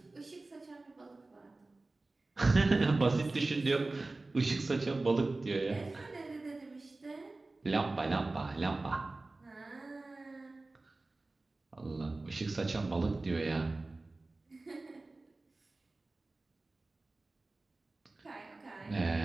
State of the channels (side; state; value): left; quieter; 3.2 dB